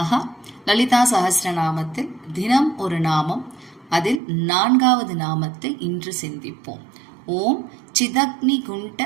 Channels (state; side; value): drops out; left; at 4.2 s